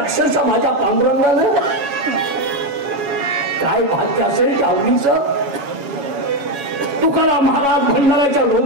माझ्या पांडुरंगानं काय भाग्य असेल आवडीचं. तुकाराम महाराज भंडाऱ्याच्या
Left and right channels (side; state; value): left; late; 7.1 ms